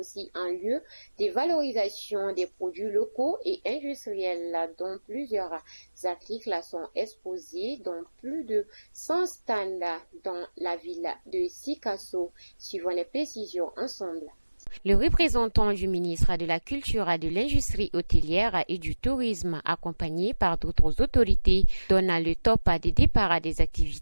un lieu de valorisation des produits locaux et industriels dont plusieurs articles sont exposés dans plus de 100 stands dans la ville de Sikasso. Suivons les précisions ensemble. Le représentant du ministre de la Culture, de l'Industrie hôtelière et du Tourisme, accompagné par d'autres autorités, donne le top des départs des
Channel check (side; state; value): both; inverted; correlation -1.00